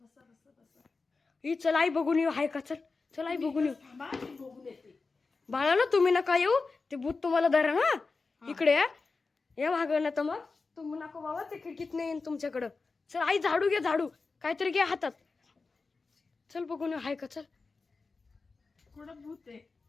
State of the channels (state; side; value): quieter; right; 4.1 dB